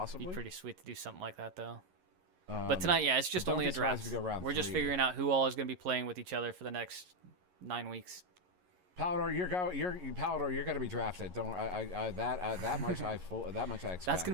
Be pretty sweet to do something like that, though. But tonight, yeah, it's just don't only be a surprised draft. if we go round We're just 3. figuring out who all is going to be playing with each other for the next 9 weeks. Palador, you're gonna be drafted. Don't that much I expect. That's gonna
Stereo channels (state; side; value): late; left; 11 ms